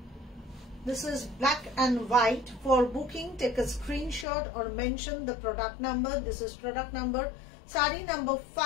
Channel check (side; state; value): right; drops out; at 4.2 s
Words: This is black and white. For booking, take a screenshot or mention the product number. This is product number, sari number